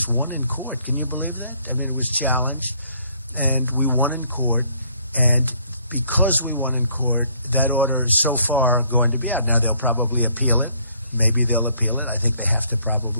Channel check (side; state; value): both; inverted; correlation -0.65